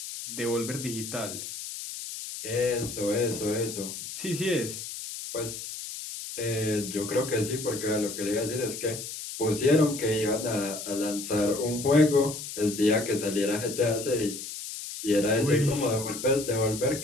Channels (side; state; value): left; noise; hiss, 8 dB below the sound